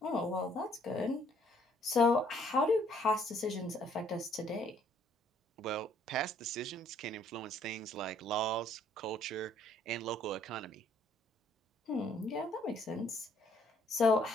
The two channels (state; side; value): normal; both; correlation 0.64